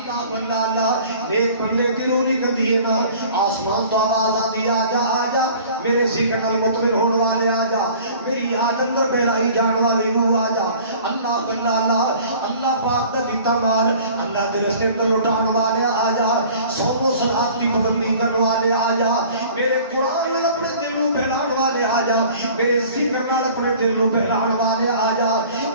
اللہ اللہ ایک بندے کی روح نکلتی ہے نا آسمان تو آواز آتی آ جا میرے ذکر نال مطمئن ہونے والے آ جا میری یاد اندر بہلائی جان والی روح آ جا اللہ اللہ اللہ اللہ پاک دا دیتا مال اللہ تیرے سے اندر لٹان والے آ جا صوم و صلات کی پابندی کرنے والے آ جا میرے قرآن نال اپنے دل نو بہلان والے آ جا میرے ذکر نال اپنے دل نو بہلان والے آ جا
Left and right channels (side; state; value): both; inverted; correlation -0.48